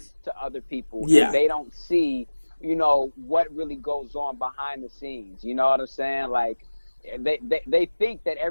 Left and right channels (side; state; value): both; inverted; correlation -1.00